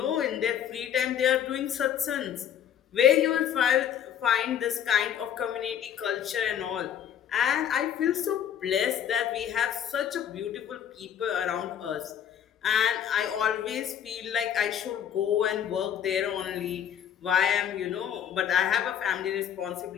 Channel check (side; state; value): right; quieter; 9.4 dB